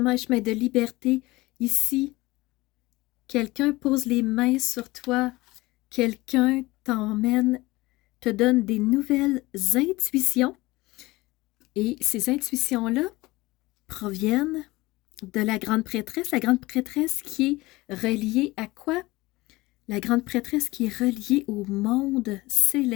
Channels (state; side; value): quieter; right; 20.4 dB